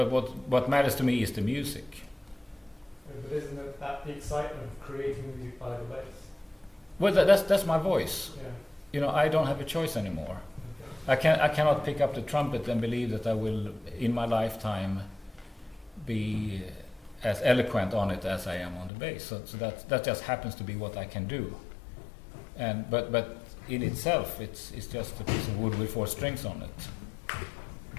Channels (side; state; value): right; drops out; at 18.9 s